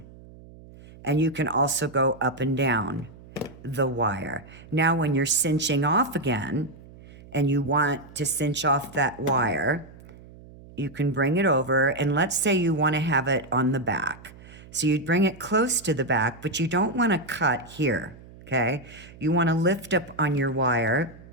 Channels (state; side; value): noise; right; hum, 20 dB below the sound